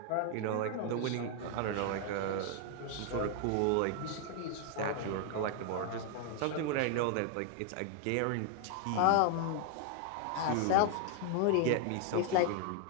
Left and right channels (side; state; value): both; different; correlation 0.00